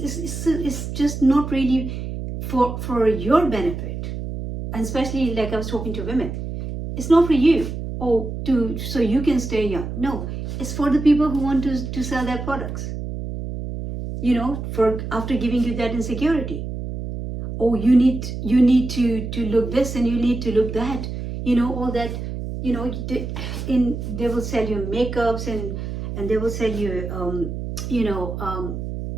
just not really for your benefit. And especially like I was talking to women. It's not for you. So you can stay young. No, it's for the people who want to sell their products. For after giving you that insecurity. You need to look this and you need to look that. All that. They will sell you makeups and they will sell you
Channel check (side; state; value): right; noise; hum, 6 dB below the sound